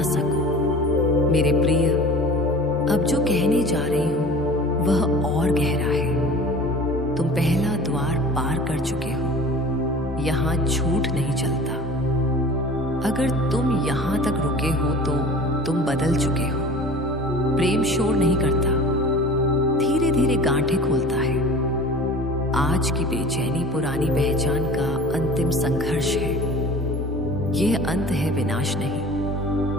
सको। मेरे प्रिय, अब जो कहने जा रही हूँ वह और गहरा है। तुम पहला द्वार पार कर चुके हो। यहाँ झूठ नहीं चलता। अगर तुम यहाँ तक रुके हो तो तुम बदल चुके हो। प्रेम शोर नहीं करता, धीरे धीरे गांठें खोलता है। आज की बेचैनी पुरानी पहचान का अंतिम संघर्ष है। यह अंत है, विनाश नहीं।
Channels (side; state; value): both; normal; correlation 0.41